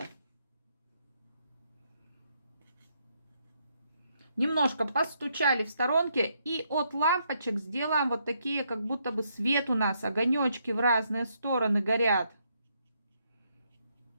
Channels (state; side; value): inverted; both; correlation -0.75